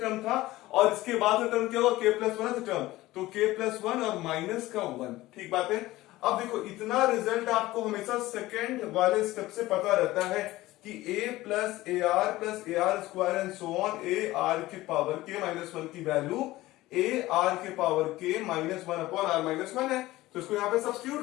टर्म था और इसके बाद का टर्म क्या होगा, k प्लस 1th टर्म। तो k प्लस 1 और माइनस का 1। ठीक बात है, अब देखो इतना रिजल्ट आपको हमेशा सेकंड वाले स्टेप से पता रहता है कि a plus a r square and so on a r के पावर के माइनस वन की वैल्यू ए आर के power k minus one upon r minus one है। तो इसको यहां पे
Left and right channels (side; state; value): right; quieter; 17.5 dB